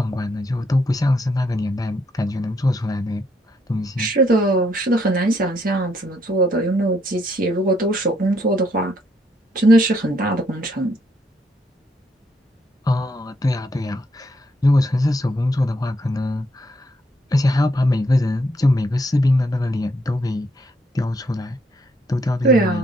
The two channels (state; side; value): normal; both; correlation 0.73